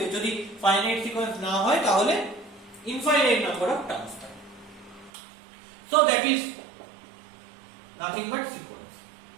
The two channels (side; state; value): left; drops out; at 5.1 s